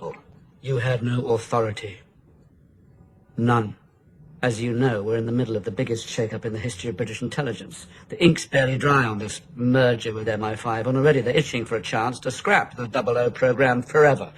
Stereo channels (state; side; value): identical; both; correlation 1.00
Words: You had no authority. None. As you know, we're in the middle of the biggest shake-up in the history of British intelligence. The ink's barely dry on this merger with MI5, and already they're itching for a chance to scrap the 00 program forever,